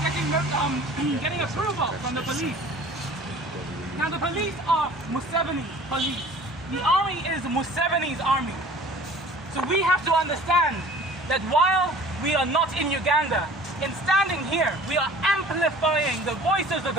approval from the police. Now the police are Museveni police. The army is Museveni's army. So we have to understand that while we are not in Uganda, in standing here, we are amplifying the voices of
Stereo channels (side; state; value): both; normal; correlation 0.46